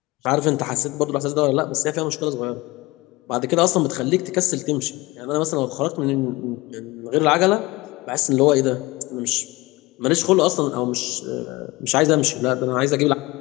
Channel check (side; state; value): right; quieter; 21.5 dB